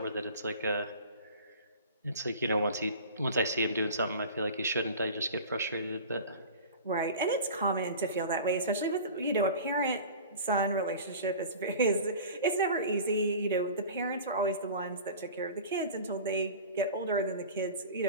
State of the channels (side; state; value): both; inverted; correlation -0.38